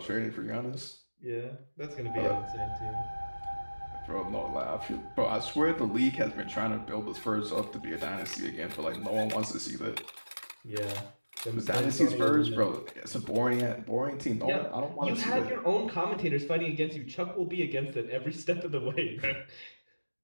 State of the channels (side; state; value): both; inverted; correlation -1.00